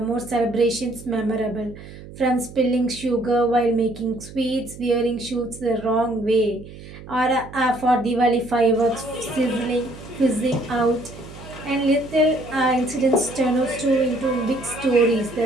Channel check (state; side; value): noise; right; hum, 16 dB below the sound